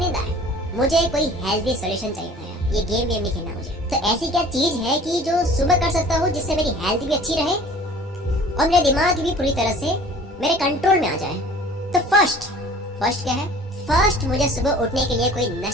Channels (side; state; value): both; normal; correlation 0.47